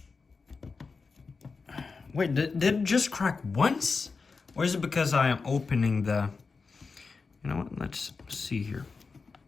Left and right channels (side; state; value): right; quieter; 4.6 dB